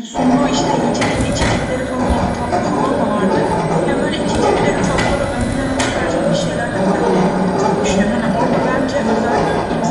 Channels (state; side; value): identical; both; correlation 1.00